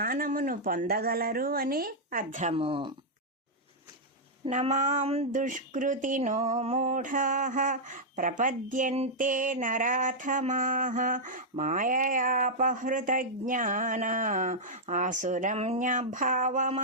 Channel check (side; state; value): both; normal; correlation -0.06